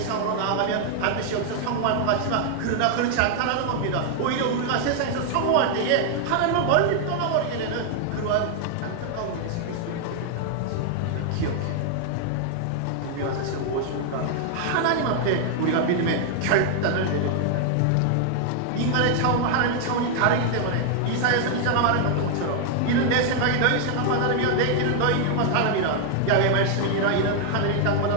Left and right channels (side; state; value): both; different; correlation 0.00